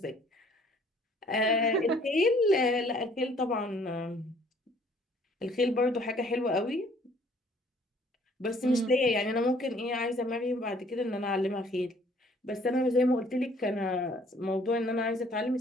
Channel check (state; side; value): normal; both; correlation 0.59